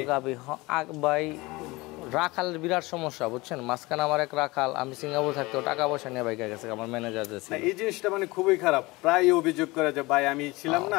ভাই রাখালের বিরাট সমস্যা বুঝছেন। মাঝখানে আমার এক রাখাল, আমি সিঙ্গাপুর থাকতেও টাকা পয়সা নিয়ে বাইকে গেছে আমার ম্যানেজার যে ছিল। এই জিনিসটা মানে খুবই খারাপ, প্রায় অভিযোগ করে যে ভাই আমি ছিলাম না,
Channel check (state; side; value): quieter; right; 22.4 dB